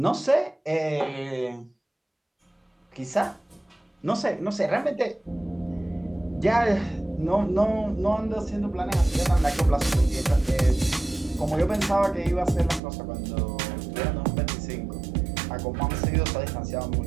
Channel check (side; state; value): left; drops out; at 12.8 s